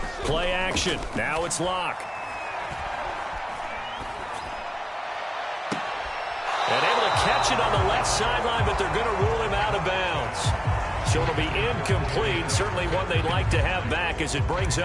Play action. Now it's Locke. And able to catch it on the left sideline, but they're going to rule him out of bounds. So it'll be incomplete. Certainly one they'd like to have back as it brings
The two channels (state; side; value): identical; both; correlation 1.00